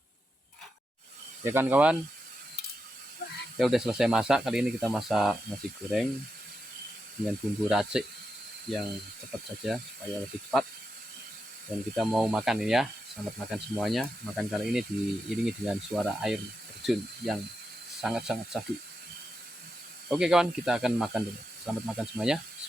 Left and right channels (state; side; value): normal; both; correlation 0.87